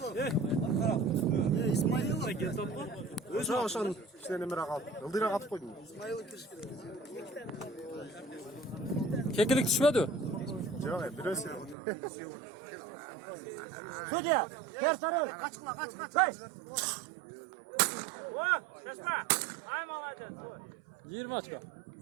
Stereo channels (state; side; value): drops out; left; at 11.8 s